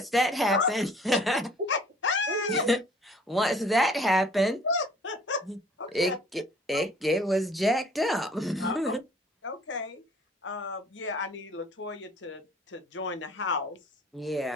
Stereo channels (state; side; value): normal; both; correlation 0.54